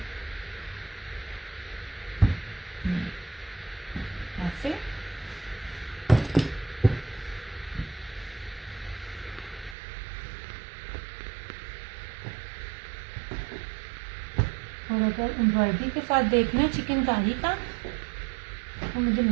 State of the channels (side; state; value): left; drops out; at 9.8 s